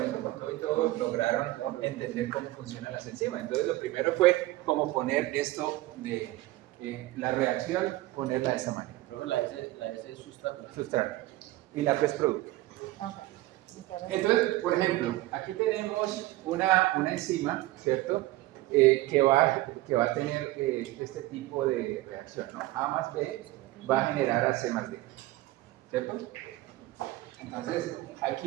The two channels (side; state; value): left; quieter; 17.8 dB